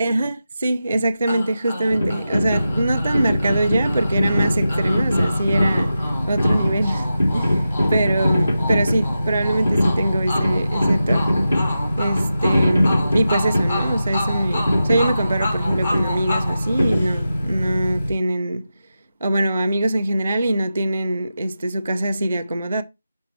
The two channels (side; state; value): both; inverted; correlation -0.91